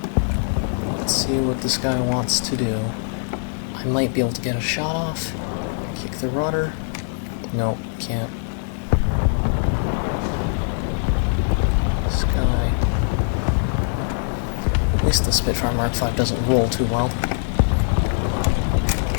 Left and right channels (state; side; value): silent; right; 64 dB below the other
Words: Let's see what this guy wants to do. I might be able to get a shot off. Kick the rudder. No, can't. At least the Spitfire Mag 5 doesn't roll too well.